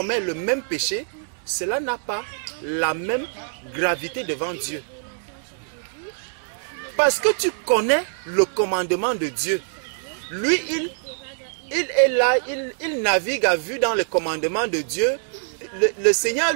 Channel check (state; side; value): silent; left; digital silence